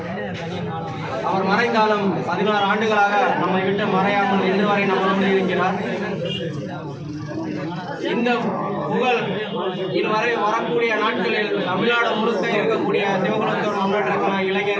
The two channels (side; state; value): both; identical; correlation 1.00